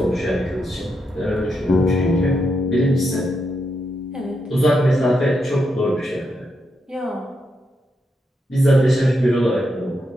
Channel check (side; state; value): both; normal; correlation 0.83